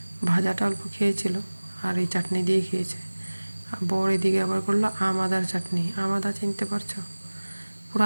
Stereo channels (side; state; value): both; inverted; correlation -1.00